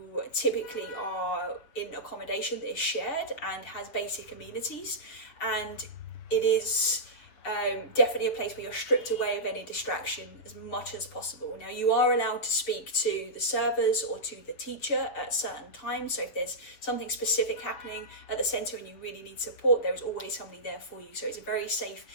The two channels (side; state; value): right; late; 7.0 ms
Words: typically are in accommodation that is shared and has basic amenities, and it is definitely a place where you're stripped away of any distraction as much as possible. Now, you are allowed to speak to the servers or to the teacher at certain times, so if there's something specific happening at the centre and you really need support, there is always somebody there for you. So it's a very safe